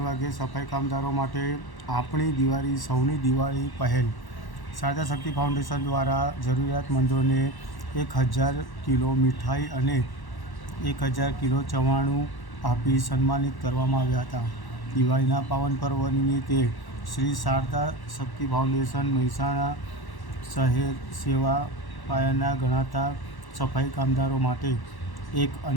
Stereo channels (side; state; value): right; late; 1.1 ms